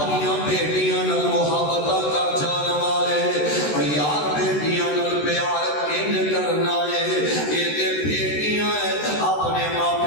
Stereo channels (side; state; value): right; late; 13 ms